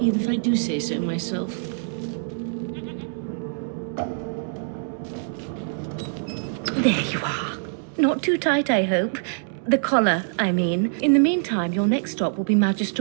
even if I do say so myself. There you are. Not too tight, I hope. The collar, I mean. In the meantime, your next stop will be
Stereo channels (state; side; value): silent; left; digital silence